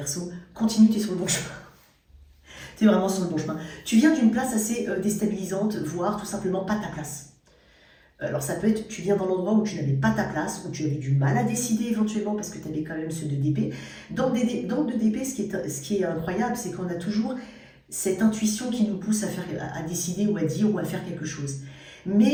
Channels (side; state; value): both; identical; correlation 1.00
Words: continue, tu es sur le bon chemin. Tu es vraiment sur le bon chemin. Tu viens d'une place assez déstabilisante, voire tout simplement pas ta place. Alors ça peut être, tu viens dans l'endroit où tu n'avais pas ta place, où tu avais du mal à décider éventuellement parce que tu avais quand même ce 2 d'épée. Dans le 2 d'épée, ce qui est incroyable, c'est qu'on a toujours cette intuition qui nous pousse à décider ou à dire ou à faire quelque chose.